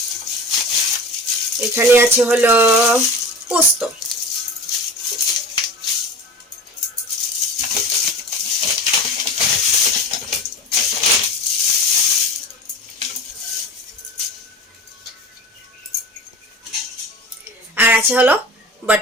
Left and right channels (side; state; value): both; normal; correlation 0.33